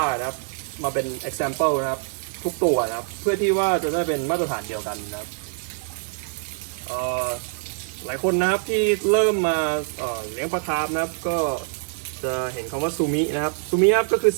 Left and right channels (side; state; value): left; silent; 62 dB below the other